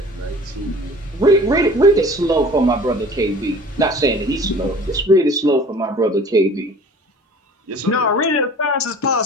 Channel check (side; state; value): both; normal; correlation 0.45